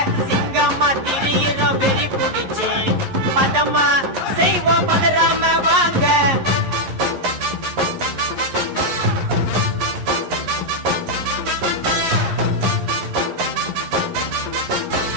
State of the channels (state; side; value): late; left; 11 ms